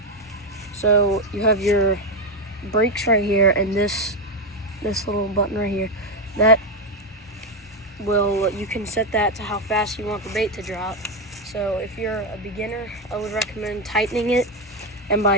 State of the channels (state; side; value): normal; both; correlation 0.08